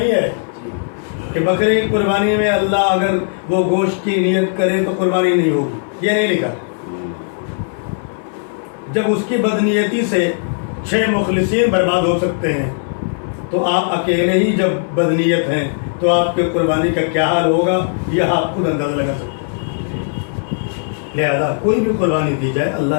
ہے کہ بکرے کی قربانی میں اللہ اگر وہ گوشت کی نیت کرے تو قربانی نہیں ہوگی، یہ نہیں لکھا. جب اس کی بدنیتی سے 6 مخلصین برباد ہو سکتے ہیں تو آپ اکیلے ہی جب بدنیت ہیں تو آپ کی قربانی کا کیا حال ہوگا یہ آپ خود اندازہ لگا سکتے ہیں. لہذا کوئی بھی قربانی دی جائے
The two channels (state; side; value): silent; right; 60 dB below the other